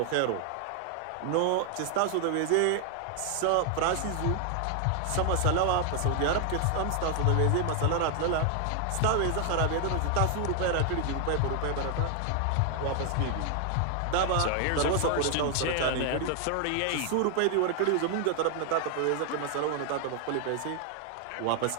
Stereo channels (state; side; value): different; both; correlation 0.00